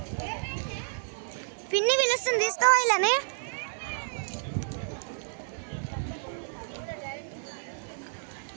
పిన్ని పిలుస్తుంది తీసుకోవాలని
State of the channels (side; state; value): left; silent; digital silence